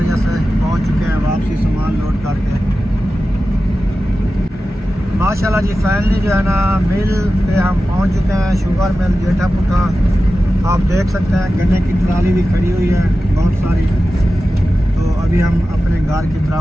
से पहुँच चुके हैं वापसी सामान लोड करके। माशाल्लाह जी फाइनली जो है ना मिल पे हम पहुँच चुके हैं, शुगर मिल जेठा पुठा। आप देख सकते हैं गन्ने की ट्राली भी खड़ी हुई है बहुत सारी। तो अभी हम अपने घर की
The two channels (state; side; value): normal; both; correlation 0.93